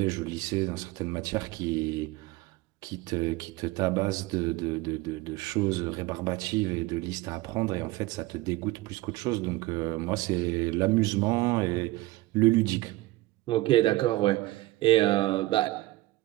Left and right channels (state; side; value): quieter; left; 19.0 dB